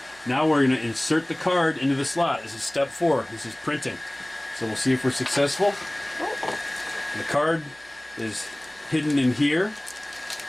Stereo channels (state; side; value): noise; right; hum, 28 dB below the sound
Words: now we're going to insert the card into the slot. This is step 4. This is printing. So we'll see if we're successful. The card is hidden in here.